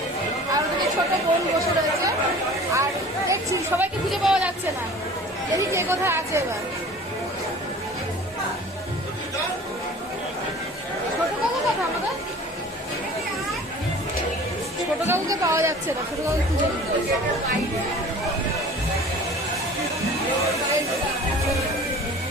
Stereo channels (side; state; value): both; normal; correlation 0.44